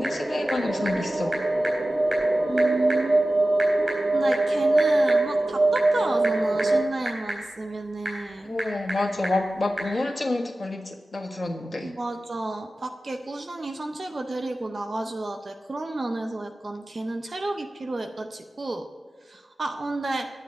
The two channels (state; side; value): normal; both; correlation 0.96